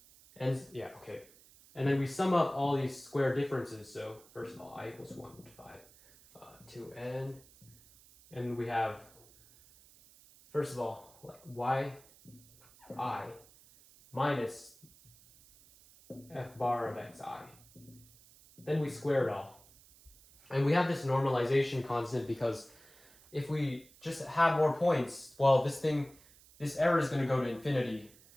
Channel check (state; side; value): noise; right; hiss, 25 dB below the sound